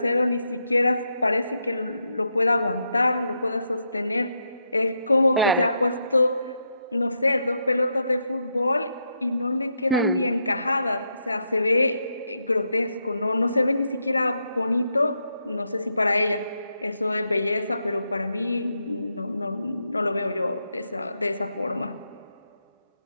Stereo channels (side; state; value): both; inverted; correlation -0.81